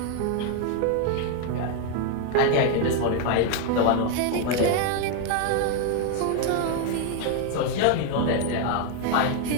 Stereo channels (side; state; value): both; different; correlation 0.01